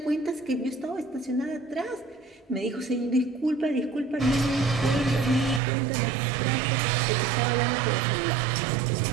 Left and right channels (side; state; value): left; drops out; at 5.6 s